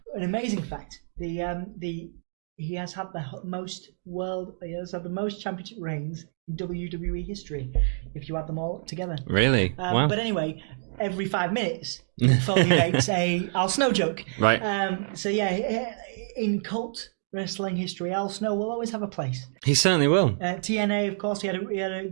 an amazing fact. He has had the most championship reigns in WWE history, if you add them all together. Really? Wow. But anyway, every 5 minutes, Mick Foley makes a Al Snow joke. Right. So yeah, in cult wrestling history, Al Snow will always have a place. He certainly will. TNA, of course, he had a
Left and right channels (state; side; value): silent; left; digital silence